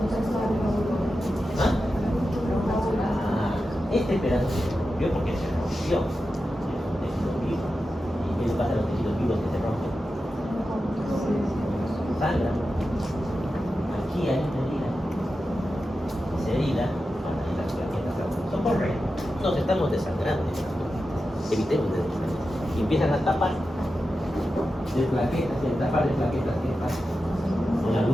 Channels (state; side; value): normal; both; correlation 0.91